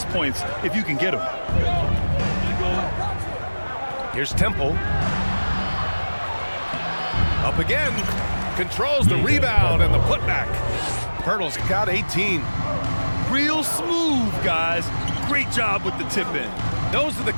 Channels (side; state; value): both; inverted; correlation -1.00